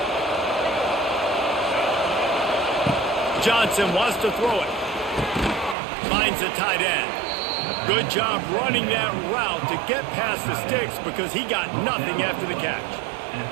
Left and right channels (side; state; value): left; drops out; at 5.8 s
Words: Johnson wants to throw it. Finds a tight end. Good job running that route to get past the sticks because he got nothing after the catch.